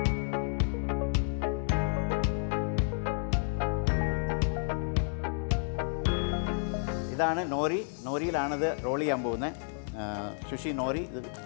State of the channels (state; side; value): silent; right; 57 dB below the other